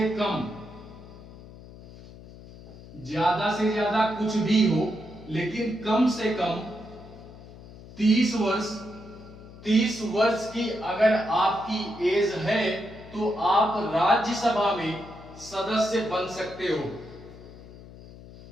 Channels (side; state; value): left; noise; hum, 18 dB below the sound